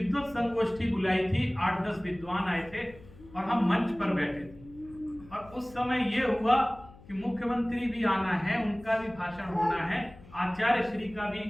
संगोष्ठी बुलाई थी, 8-10 विद्वान आए थे और हम मंच पर बैठे थे। और उस समय ये हुआ कि मुख्यमंत्री भी आना है, उनका भी भाषण होना है, आचार्य श्री का भी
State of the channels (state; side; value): noise; left; hum, 21 dB below the sound